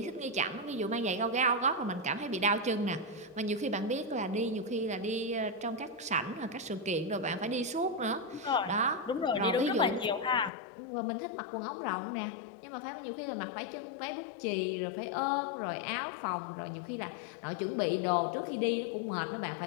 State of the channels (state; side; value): drops out; right; at 10.5 s